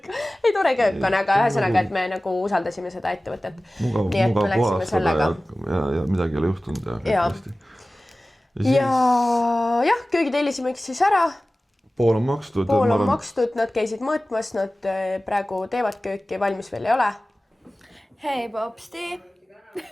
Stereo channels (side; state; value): both; normal; correlation 0.97